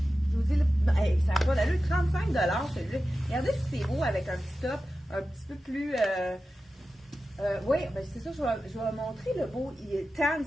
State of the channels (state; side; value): normal; both; correlation 0.93